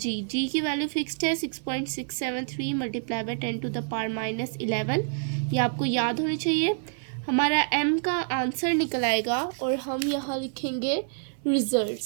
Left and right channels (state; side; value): silent; left; 60 dB below the other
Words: की वैल्यू फिक्स्ड है 6.673 multiply by 10 to the power -11. ये आपको याद होनी चाहिए. हमारा m का आंसर निकल आएगा और हम यहाँ लिखेंगे